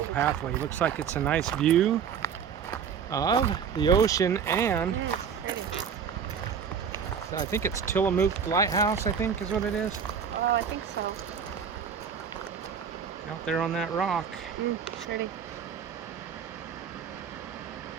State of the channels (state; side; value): quieter; left; 7.1 dB